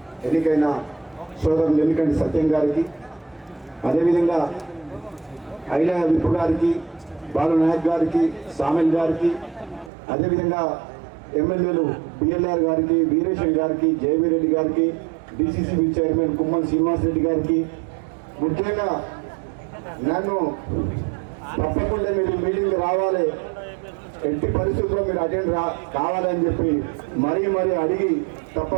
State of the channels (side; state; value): left; drops out; at 9.9 s